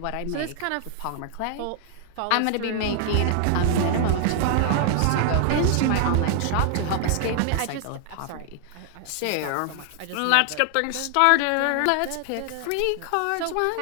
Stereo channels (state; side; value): different; both; correlation 0.00